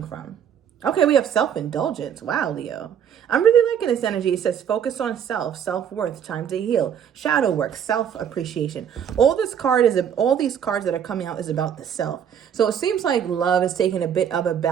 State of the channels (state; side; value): quieter; left; 8.6 dB